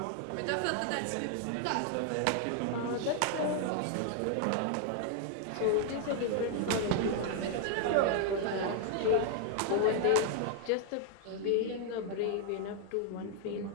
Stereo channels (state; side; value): different; both; correlation 0.00